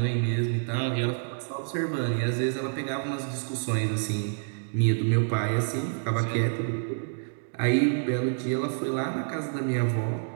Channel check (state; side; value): silent; left; digital silence